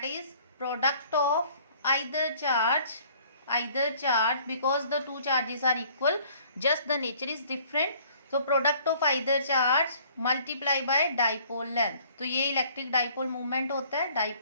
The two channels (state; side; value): inverted; both; correlation -0.57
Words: is product of either charge because the two charges are equal, just the nature is different. तो product of either charge multiply by dipole length. तो ये electric dipole movement होता है,